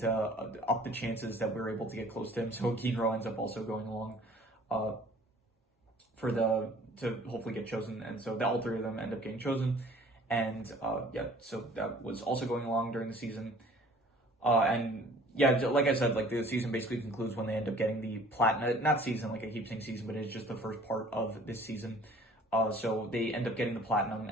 to up the chances that we're able to get close to him. So Ginro ends up also going along to hopefully get chosen, and so all three of them end up getting chosen, and yeah, so that was also going along during the season, and yeah, like I said, like the season basically concludes when they end up getting the platinum. Not season, like I keep saying season, but it's just the first part of this season. So they end up getting the platinum,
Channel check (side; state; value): both; normal; correlation 0.52